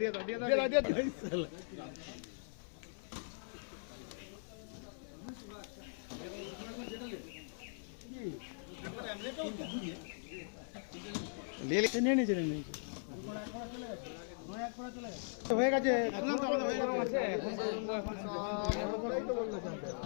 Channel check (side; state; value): right; silent; 51 dB below the other